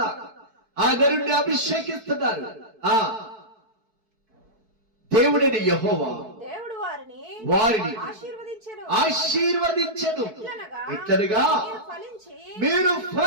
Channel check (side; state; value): left; late; 4.6 ms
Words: ఆ నరుణ్ణి అభిషేకిస్తున్నారు. ఆ దేవుడని యెహోవా వారిని ఆశీర్వదించెను. ఇట్లనగా మీరు